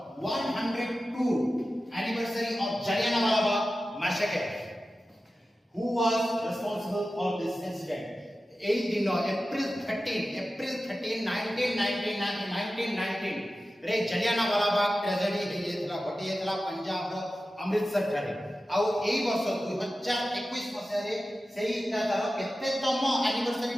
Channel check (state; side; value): normal; both; correlation 0.94